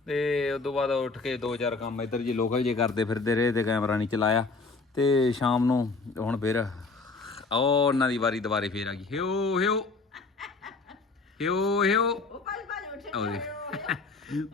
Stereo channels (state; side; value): quieter; right; 3.9 dB